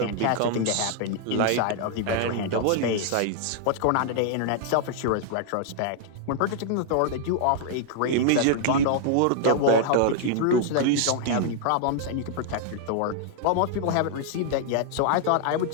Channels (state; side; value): different; both; correlation -0.01